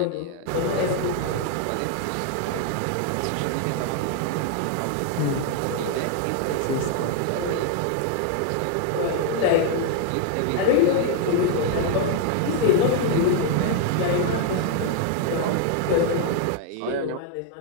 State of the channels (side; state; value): both; different; correlation 0.00